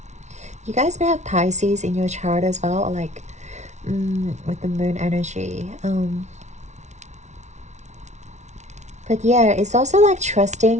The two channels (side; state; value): left; late; 0.33 ms